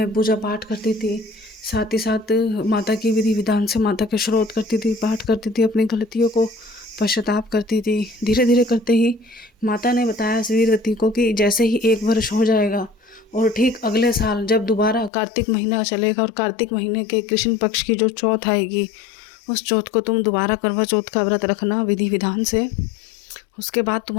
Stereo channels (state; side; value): drops out; right; at 15.1 s